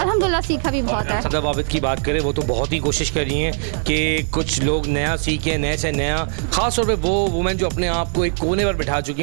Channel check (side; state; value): left; silent; 66 dB below the other